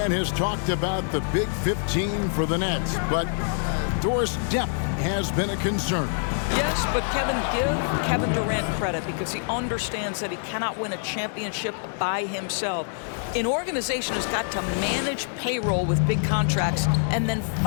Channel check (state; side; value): silent; right; digital silence